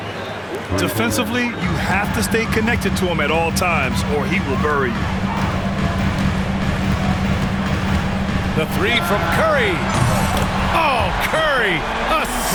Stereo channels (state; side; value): identical; both; correlation 1.00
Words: Defensively, you have to stay connected to him at all times, or he will bury you. The three from Curry. Oh, Curry, a